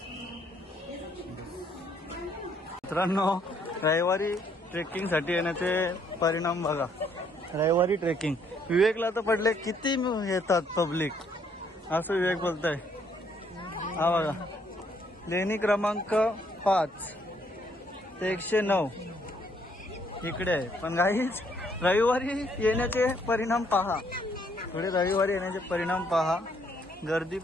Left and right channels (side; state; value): both; normal; correlation 0.68